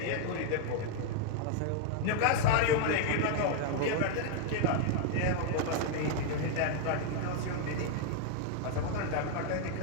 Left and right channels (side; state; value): both; different; correlation 0.00